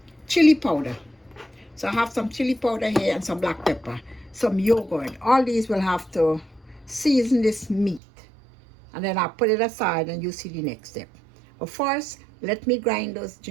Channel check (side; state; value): left; drops out; at 8.0 s